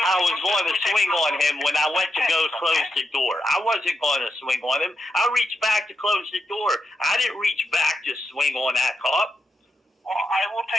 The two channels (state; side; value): normal; both; correlation 0.84